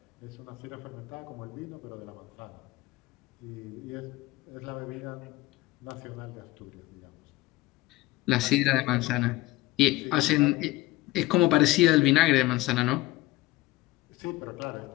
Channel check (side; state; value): right; quieter; 18.7 dB